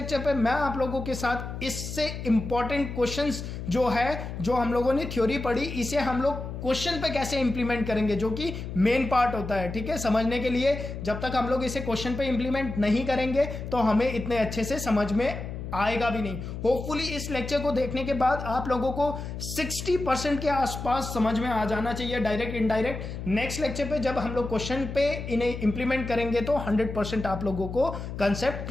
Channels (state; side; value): noise; left; hum, 7 dB below the sound